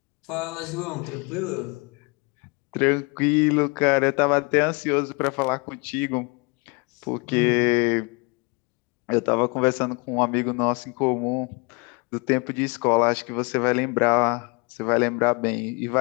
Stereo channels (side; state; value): right; quieter; 30.5 dB